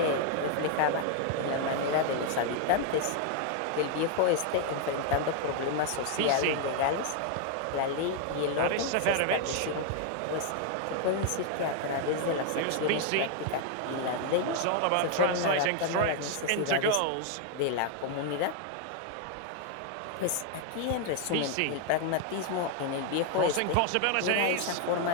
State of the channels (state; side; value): different; both; correlation 0.01